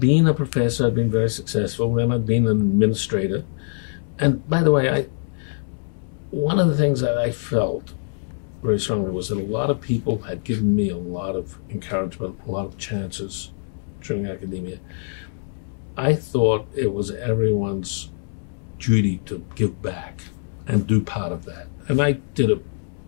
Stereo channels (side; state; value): right; silent; 63 dB below the other